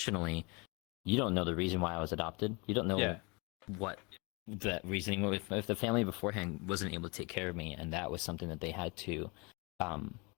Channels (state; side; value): quieter; right; 29.7 dB